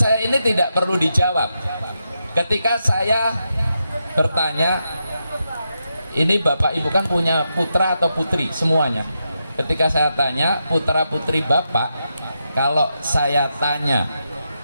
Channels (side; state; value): both; inverted; correlation -0.85